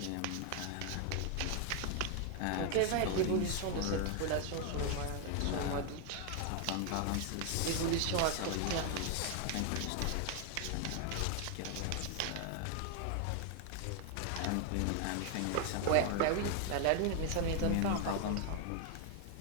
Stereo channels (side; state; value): both; different; correlation 0.00